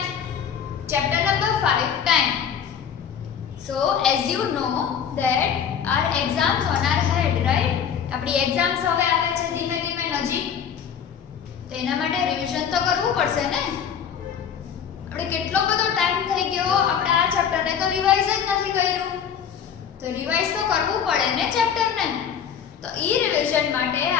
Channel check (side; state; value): right; quieter; 8.0 dB